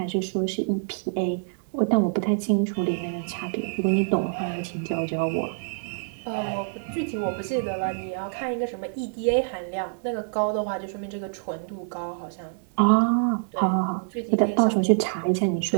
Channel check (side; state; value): left; silent; digital silence